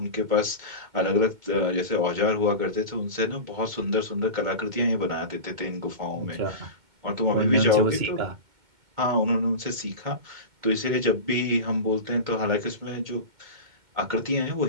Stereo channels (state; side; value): late; left; 2.2 ms